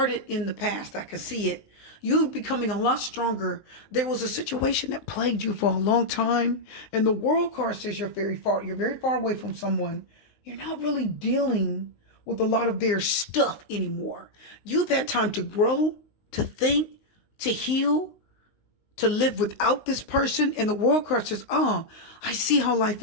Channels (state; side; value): late; right; 19 ms